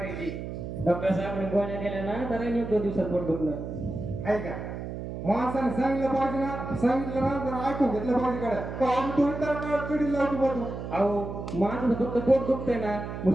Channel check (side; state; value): right; noise; hum, 7 dB below the sound